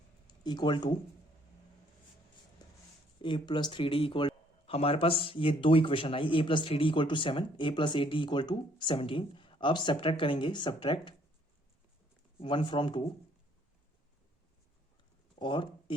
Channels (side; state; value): both; normal; correlation 0.64